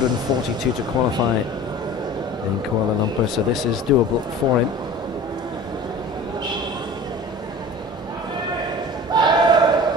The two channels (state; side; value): normal; both; correlation 0.40